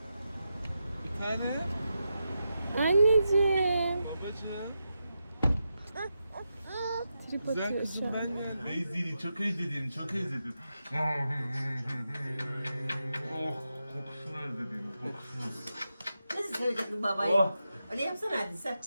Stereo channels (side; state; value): both; inverted; correlation -0.88